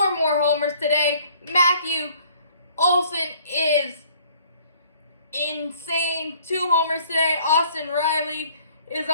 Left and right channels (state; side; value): inverted; both; correlation -0.57